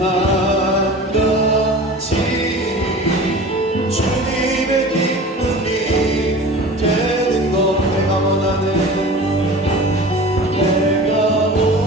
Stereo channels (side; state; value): both; normal; correlation 0.38